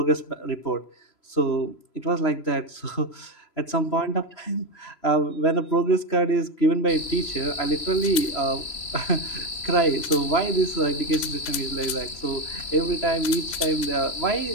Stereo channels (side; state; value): right; late; 3.0 ms